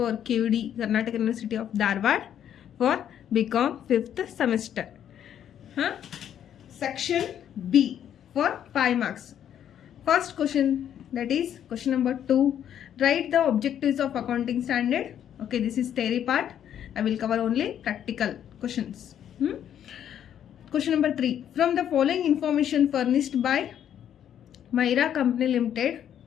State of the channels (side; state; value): right; quieter; 9.8 dB